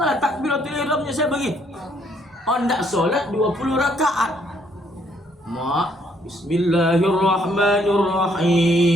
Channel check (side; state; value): both; normal; correlation 0.68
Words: takbiratul ihramnya saya bagi ondak solat 20 rakaat.